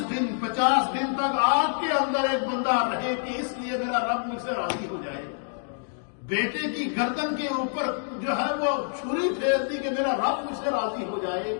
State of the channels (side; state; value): right; silent; digital silence